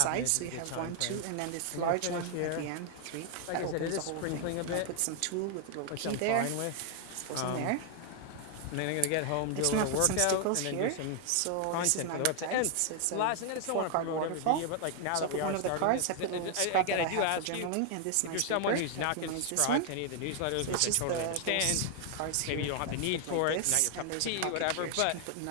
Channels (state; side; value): different; both; correlation 0.00